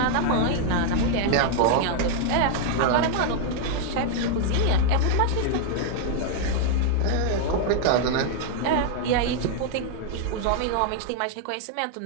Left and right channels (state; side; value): different; both; correlation 0.00